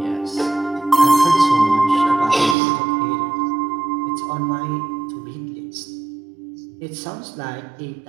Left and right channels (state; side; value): drops out; left; at 2.6 s